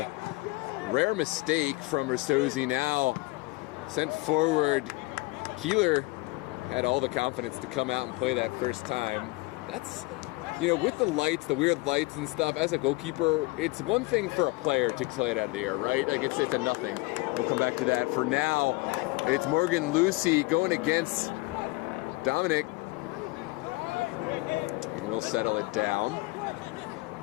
rare mistake from Ristozi. Now sent forward. Keeler had all the confidence to come out and play that first time. That's with the lights, the weird lights and stuff, as a goalkeeper, it's one thing for a player to play it out of the air, right? Like it's a nothing. We'll come back to that. For now, it's Morgan Lucy going against Dominic. And we'll settle it down.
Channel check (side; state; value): right; quieter; 23.2 dB